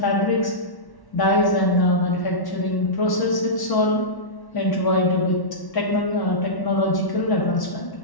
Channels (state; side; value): late; right; 1.1 ms